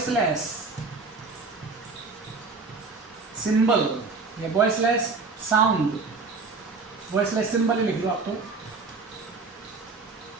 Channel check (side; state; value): left; quieter; 4.2 dB